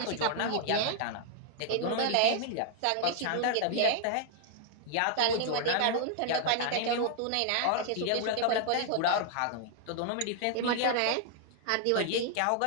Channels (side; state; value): both; different; correlation 0.00